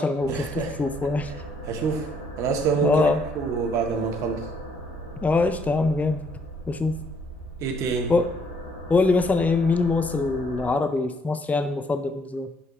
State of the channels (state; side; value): normal; both; correlation 0.67